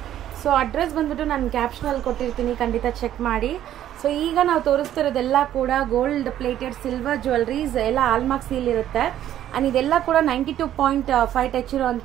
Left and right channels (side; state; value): left; quieter; 11.7 dB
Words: So address ಬಂದ್ಬಿಟ್ಟು ನಾನು ಕ್ಯಾಪ್ಷನಲ್ಲಿ ಕೊಟ್ಟಿರ್ತೀನಿ, ಖಂಡಿತ ಚೆಕ್ ಮಾಡಿ. ಸೊ ಈಗ ನಾವು ತೋರಿಸ್ತಿರೋದೆಲ್ಲ ಕೂಡ ಗೋಲ್ಡ್ ಪ್ಲೇಟೆಡ್ ಸಿಲ್ವರ್ ಜ್ಯುವೆಲ್ಲರೀಸ್, ಎಲ್ಲ ಆಲ್ಮಾರ್ಕ್ ಸೀಲ್ ಇರುತ್ತೆ. ಆ್ಯಂಡ್ ಇದೆಲ್ಲ ಕೂಡ 92.5 ಟಚ್